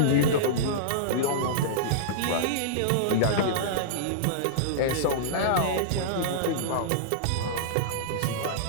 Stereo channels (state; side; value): different; both; correlation -0.02